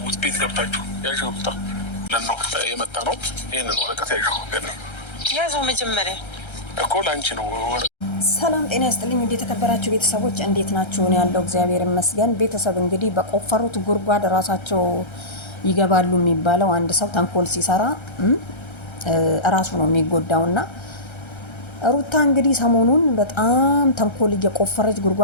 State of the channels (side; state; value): right; late; 1.3 ms